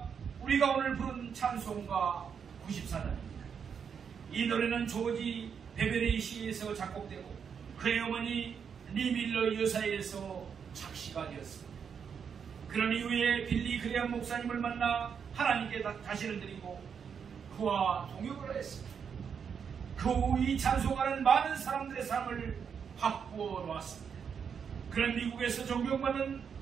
우리가 오늘 부른 찬송가 94단입니다. 이 노래는 조지 베베리 시에서 작곡되고 그의 어머니 리 밀러 여사에서 작시가 되었습니다. 그런 이후에 빌리 그레엄 목사님을 만나 하나님께 다시를 드리고 그와 동역을 했습니다. 그 후 이 찬송가는 많은 사람들의 삶을 바꾸어 놓았습니다. 그런 미국에서 존경받는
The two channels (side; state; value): left; quieter; 6.9 dB